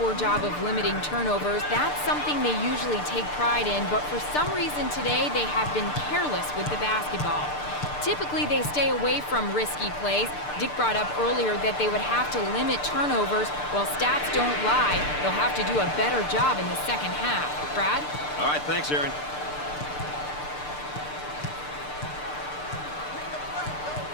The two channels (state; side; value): late; right; 6.7 ms